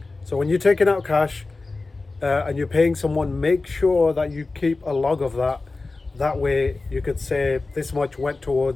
So when you're taking out cash and you're paying someone, make sure that you keep a log of that. That way you could say this much went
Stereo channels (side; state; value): right; quieter; 3.6 dB